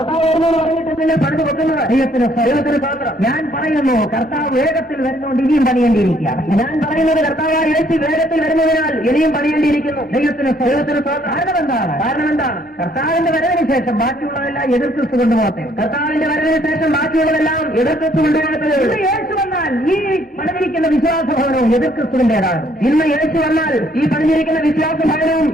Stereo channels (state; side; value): normal; both; correlation 0.65